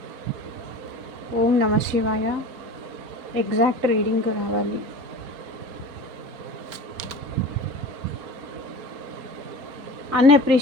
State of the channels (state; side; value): late; left; 4.3 ms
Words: ఓం నమ శివాయ. ఎగ్జాక్ట్ రీడింగ్ రావాలి.